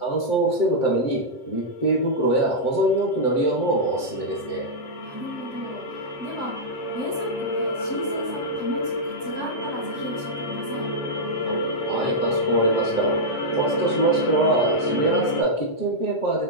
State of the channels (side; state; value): right; late; 7.9 ms